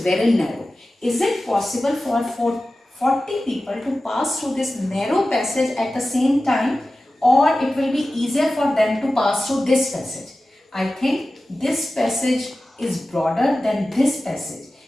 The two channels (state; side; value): normal; both; correlation 0.95